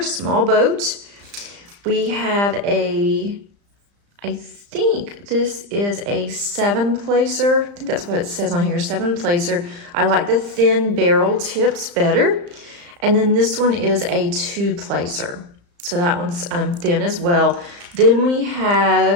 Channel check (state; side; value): late; left; 35 ms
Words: boat. We have I think this is a 7-placer. I think that's what it says on here, 7-placer. I like the thin barrel tips better. And then this one is a 2-placer. So that one's thin as well. Then we